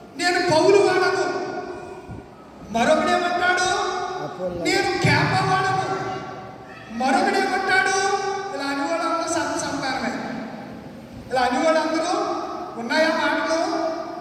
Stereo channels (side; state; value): both; identical; correlation 1.00